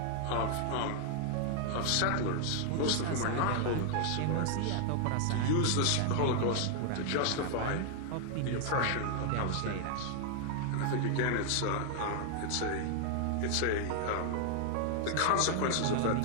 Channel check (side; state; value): both; different; correlation 0.00